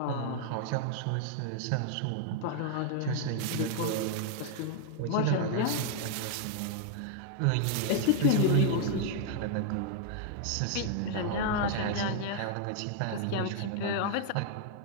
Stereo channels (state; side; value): different; both; correlation 0.00